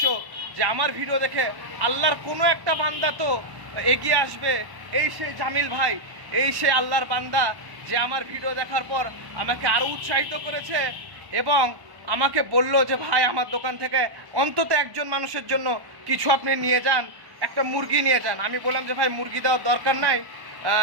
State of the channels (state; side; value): late; left; 1.1 ms